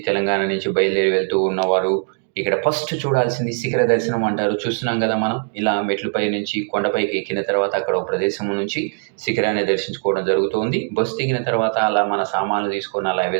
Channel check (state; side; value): silent; left; 65 dB below the other